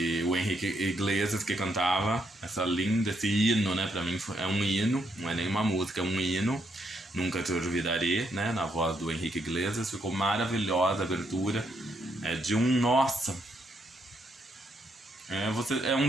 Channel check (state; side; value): normal; both; correlation 0.76